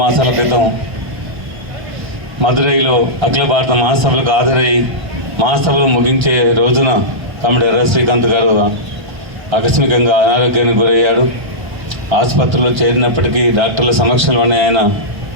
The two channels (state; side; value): late; left; 1.3 ms